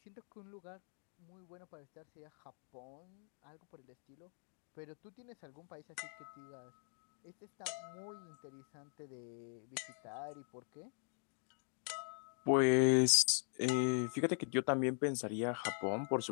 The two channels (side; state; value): right; silent; 50 dB below the other